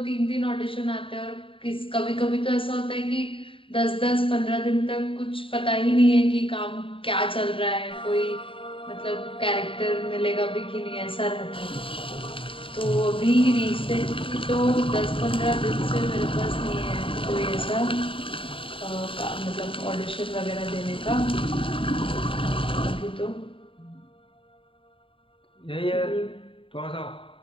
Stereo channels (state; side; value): late; right; 0.26 ms